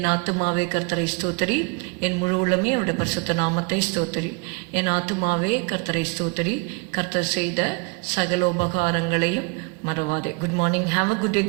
ஆத்துமாவே கர்த்தரை ஸ்தோத்திரி, என் முழு உள்ளமே அவருடைய பரிசுத்த நாமத்தை ஸ்தோத்திரி. என் ஆத்துமாவே கர்த்தரை ஸ்தோத்திரி, கர்த்தர் செய்த சகல உபகாரங்களையும் மறவாதே. Good morning. Have a good day.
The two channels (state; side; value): quieter; left; 31.5 dB